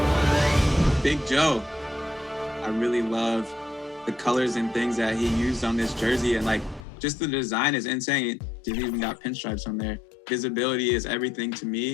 Big Joe. I really love the colors and things that he used on this jersey, and like just the design is insane. It even got pinstripes on there. visibility is everything to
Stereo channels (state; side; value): drops out; right; at 6.9 s